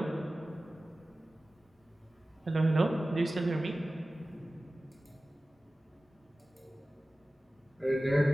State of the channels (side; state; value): both; normal; correlation 0.96